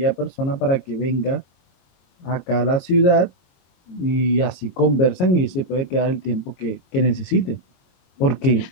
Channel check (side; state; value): right; late; 22 ms